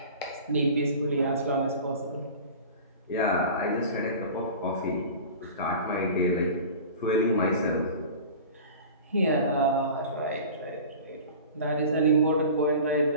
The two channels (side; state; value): both; inverted; correlation -0.37